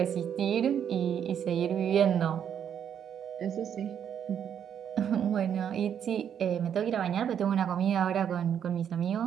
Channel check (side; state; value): left; quieter; 8.7 dB